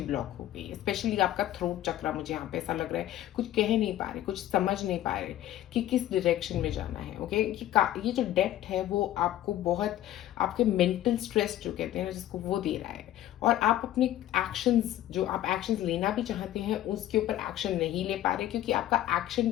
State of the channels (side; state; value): right; quieter; 13.2 dB